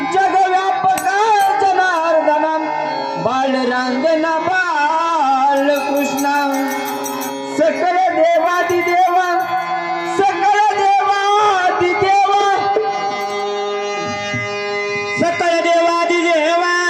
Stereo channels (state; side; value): identical; both; correlation 1.00